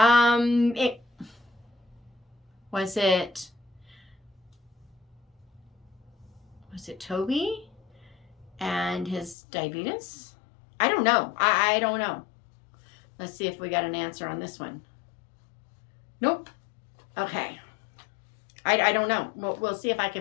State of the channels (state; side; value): drops out; right; at 9.3 s